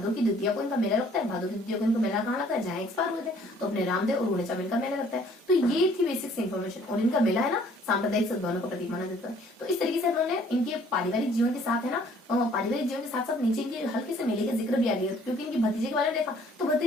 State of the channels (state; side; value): normal; both; correlation 0.58